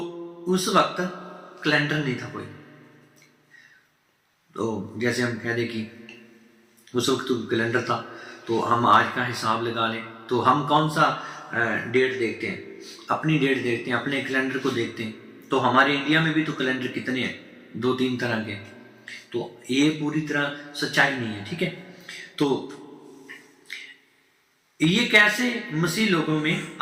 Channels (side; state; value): both; identical; correlation 1.00